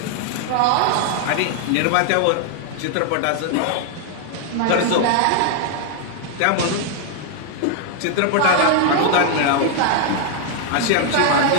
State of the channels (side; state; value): both; different; correlation 0.00